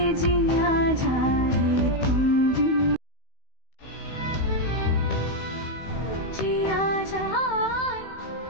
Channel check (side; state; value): right; late; 16 ms